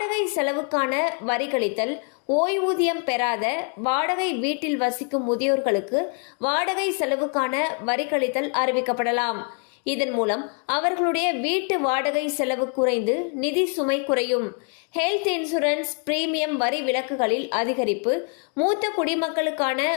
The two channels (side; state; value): right; quieter; 39.9 dB